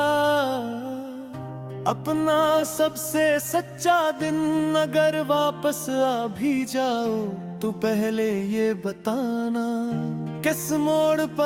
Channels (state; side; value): identical; both; correlation 1.00